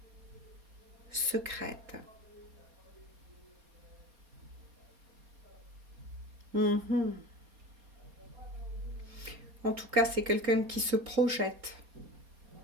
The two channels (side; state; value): left; late; 4.2 ms